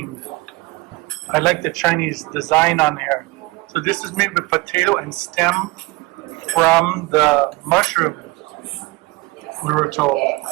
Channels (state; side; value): quieter; left; 23.3 dB